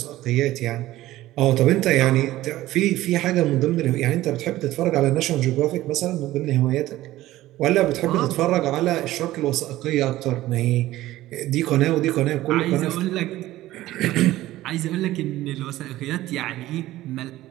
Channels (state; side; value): quieter; left; 15.8 dB